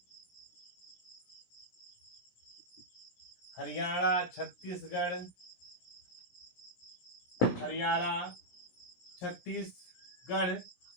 हरियाणा, छत्तीसगढ़, हरियाणा, छत्तीसगढ़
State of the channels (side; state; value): right; late; 17 ms